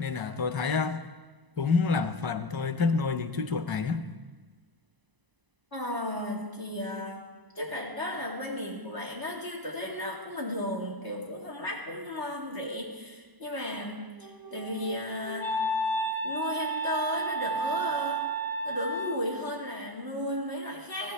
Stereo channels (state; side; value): late; left; 1.0 ms